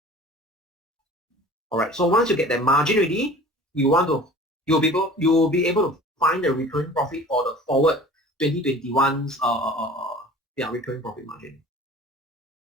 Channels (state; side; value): normal; both; correlation 0.44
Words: Alright, so once you get that margin ready, you'll be able to find the recurring profit for the forward 2021's recurring profit margin.